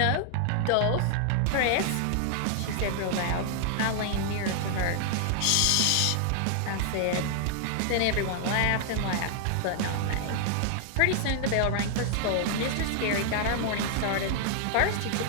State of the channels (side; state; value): both; different; correlation -0.01